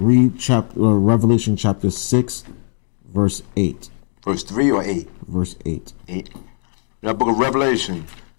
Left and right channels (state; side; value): silent; right; digital silence